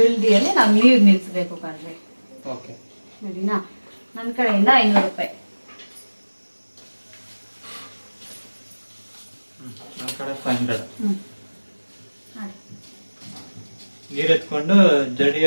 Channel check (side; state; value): both; inverted; correlation -1.00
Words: ನಾವು ನೀರ್ ನಿಲ್ಸ್ಬೇಕು ಕಣ್ರಿ. ಓಕೆ ಸರಿನಾ? ನನ್ನ ಕಡೆಯಿಂದ 500 ರೂಪಾಯಿ. ನನ್ನ ಕಡೆ 500. ಮಾಡಿ. ನೀರ್ ಎತ್ಕೊಂಡು